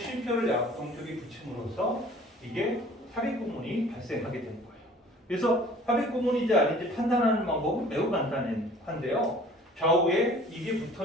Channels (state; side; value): normal; both; correlation 0.49